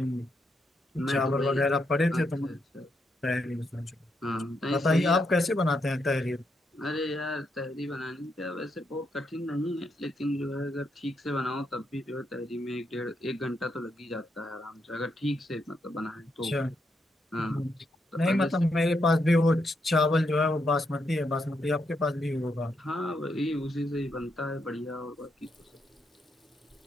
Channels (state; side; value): normal; both; correlation 0.80